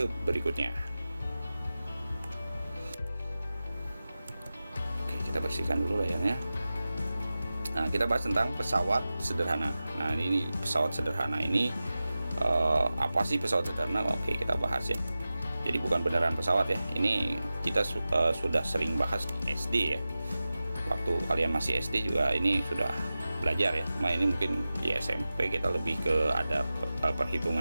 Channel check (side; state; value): both; inverted; correlation -0.95